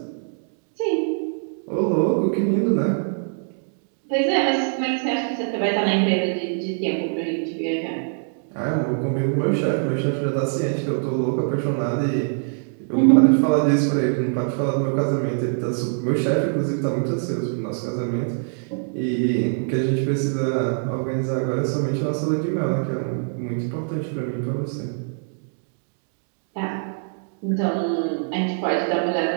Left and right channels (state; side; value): silent; left; digital silence